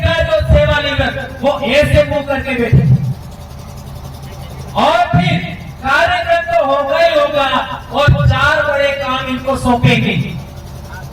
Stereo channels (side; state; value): both; identical; correlation 1.00